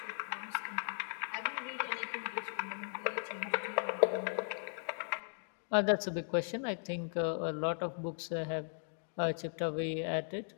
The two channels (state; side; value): silent; right; digital silence